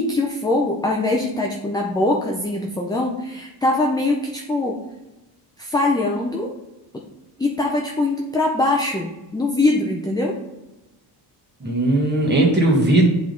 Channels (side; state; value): both; normal; correlation 0.51